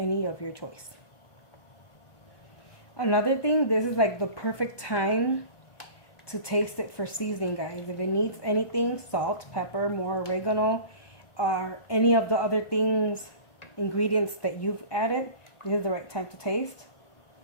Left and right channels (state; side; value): late; right; 1.2 ms